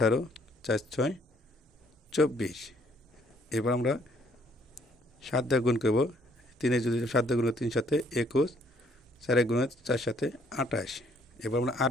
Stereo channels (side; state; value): both; normal; correlation 0.65